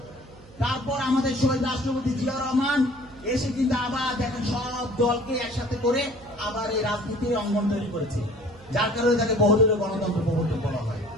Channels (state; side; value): noise; right; hum, 23 dB below the sound